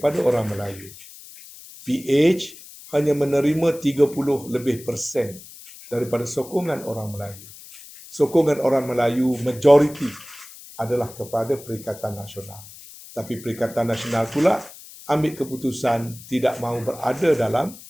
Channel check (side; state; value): left; noise; hiss, 18 dB below the sound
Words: orang Melayu. PH hanya menerima 30% daripada sokongan orang Melayu. Sokongan orang Melayu majoriti adalah kepada Perikatan Nasional. Tapi Perikatan Nasional pula ambil keputusan tidak mahu berada dalam